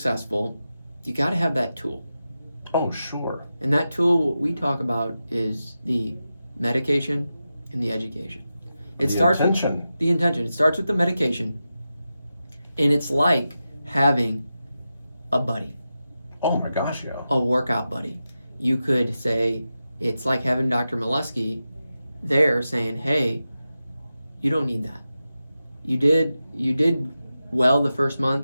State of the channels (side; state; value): both; inverted; correlation -0.91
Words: you got to have that tool. Oh, sure. And that tool, what we talk about, is the medication and the education. It starts with the intention. It starts with the medication, and it's like having a buddy. Oh my gosh, yeah. A workout buddy. You could say it's like having Dr. Molesky there saying, hey, you don't need that. You did well the first